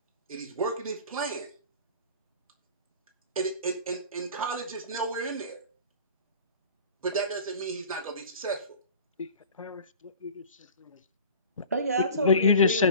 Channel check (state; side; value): inverted; both; correlation -0.41